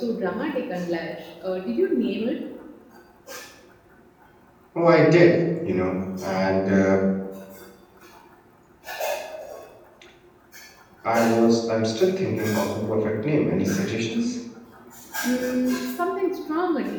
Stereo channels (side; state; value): both; identical; correlation 1.00